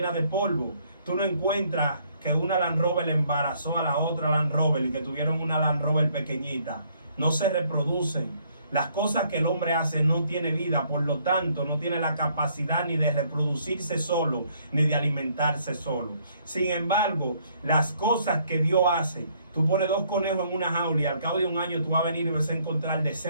de polvo. Tú no encuentras que una Land Rover embarazó a la otra Land Rover y que tuvieron una Land Rover pequeñita. No se reproducen. Las cosas que el hombre hace no tiene vida, por lo tanto no tiene la capacidad ni de reproducirse solo, ni de alimentarse solo. Sin embargo, las cosas que Dios hace, tú pones 2 conejos en una jaula y al cabo de un año tú vas a venir y vas a encontrar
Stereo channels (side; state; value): both; inverted; correlation -0.66